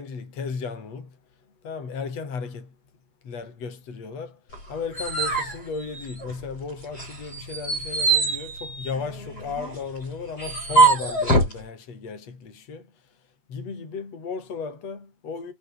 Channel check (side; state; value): right; late; 8.2 ms